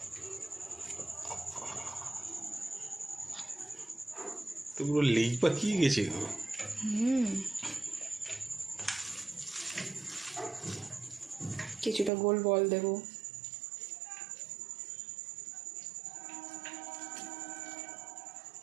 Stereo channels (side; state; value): left; drops out; at 12.1 s